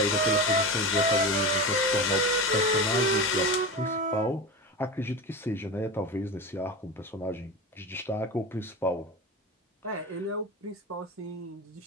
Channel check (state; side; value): normal; both; correlation 0.25